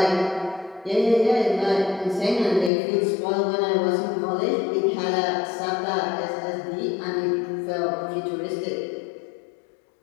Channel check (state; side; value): drops out; right; at 2.7 s